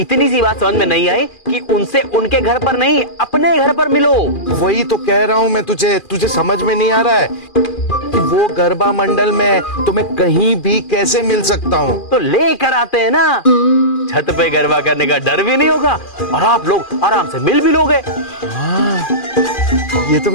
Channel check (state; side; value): late; right; 2.4 ms